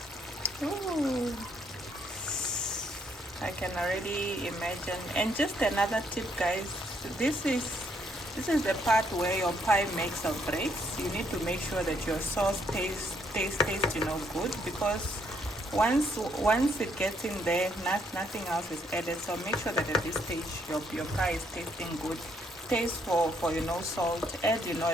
Ooh, I can already imagine. And just another tip, guys, this is the part where your pie makes or breaks. You need to make sure that your sauce tastes good, because once it gets in there, nothing else is added. So make sure that at this stage your pie is tasting good. Taste for salt. Add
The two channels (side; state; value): both; normal; correlation 0.71